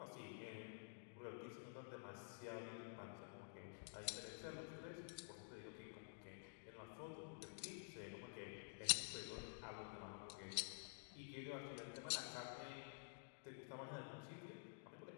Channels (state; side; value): silent; right; digital silence